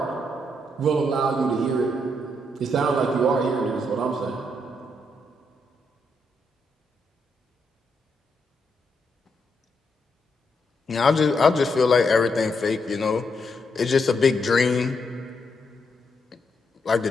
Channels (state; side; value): normal; both; correlation 0.79